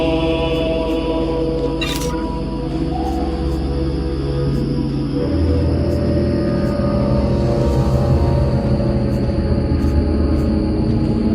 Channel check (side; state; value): both; identical; correlation 1.00